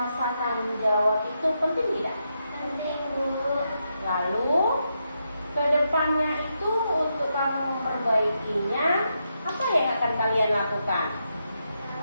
tanggung jawab itu penting tidak? Penting, Bu. Lalu, kedepannya itu untuk kamu memperbaikinya, apa yang akan kalian lakukan?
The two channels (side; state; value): both; inverted; correlation -0.83